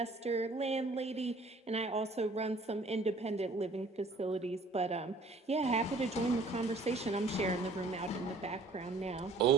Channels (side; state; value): left; quieter; 3.1 dB